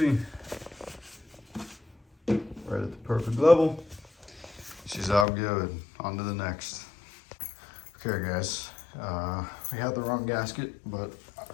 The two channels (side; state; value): right; drops out; at 5.2 s